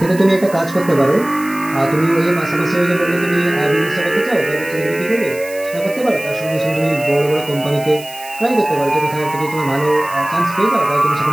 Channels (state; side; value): noise; right; hiss, 17 dB below the sound